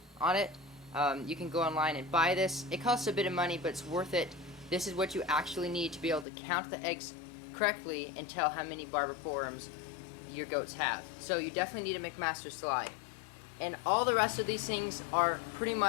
on it. You can go online and buy this. It costs a bit of money, but it's worth it. This is what you actually need to be able to count the eggs correctly and tell how many barber pole worms your goats have. So you definitely need a McMaster slide. And all the rest of these things are pretty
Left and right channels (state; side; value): drops out; right; at 6.2 s